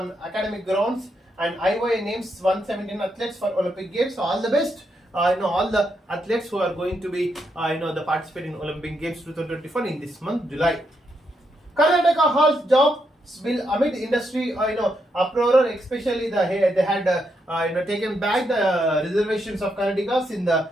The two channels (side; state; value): both; normal; correlation 0.80